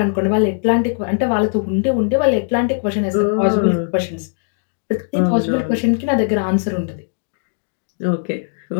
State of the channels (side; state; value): right; silent; digital silence